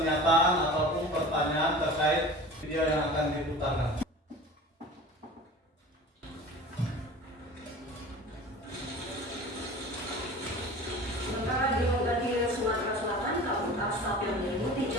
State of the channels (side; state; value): both; normal; correlation 0.38